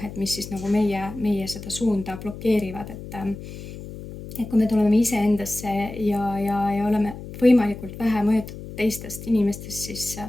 et mis siis nagu meie seda suunda blokeerivad, et kui me tuleme iseendasse ja oleme võimalikult vähe mõjutatud teistest inimestest siis,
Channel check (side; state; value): left; noise; hum, 12 dB below the sound